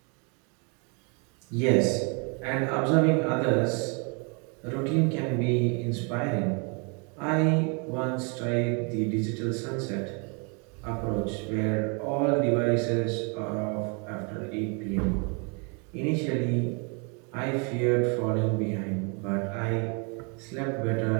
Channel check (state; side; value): quieter; left; 34.6 dB